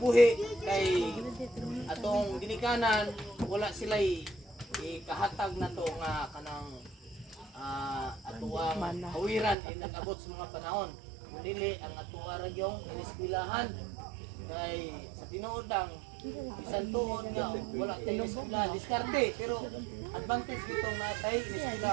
kay atong ginikanan wala sila ikahatag na to nga kanang atuang hawiran ay nag-abot sa mga panahon. Dili ang atuwa ra gyung iniskwelahan kay sa tinuod ang bisan tuod nga wala tayo iniskwela diskarte pero advantage gitong natay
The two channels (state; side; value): drops out; left; at 9.6 s